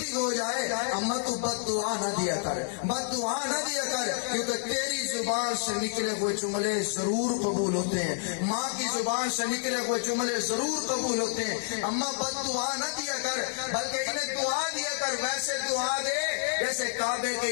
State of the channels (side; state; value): right; silent; 59 dB below the other